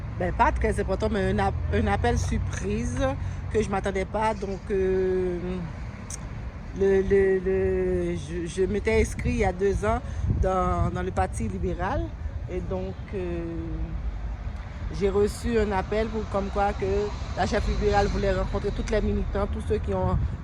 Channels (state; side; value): identical; both; correlation 1.00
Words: ben pas très important, mais un appel surprise que je ne m'attendais pas. Donc, je m'étais inscrit il y a 2 ans dans le Parti libéral. Et donc, j'ai reçu un appel comme quoi que la chef libérale voulait rencontrer toutes les militants, tous ceux qui